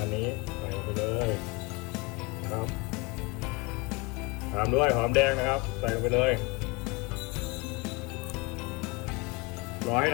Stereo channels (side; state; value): right; quieter; 26.6 dB